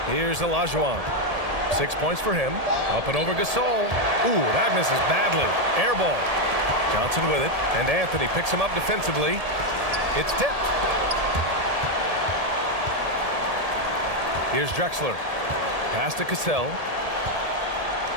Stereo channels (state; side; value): late; left; 1.7 ms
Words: Here's Olajuwon. 6 points for him. Up and over Gasol. Ooh, that misses badly. Air ball. Johnson with it. And Anthony picks him up defensively. It's tipped. Here's Drexler. Pass to Cassell.